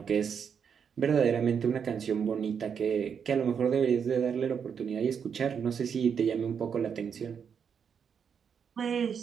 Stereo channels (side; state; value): left; quieter; 7.1 dB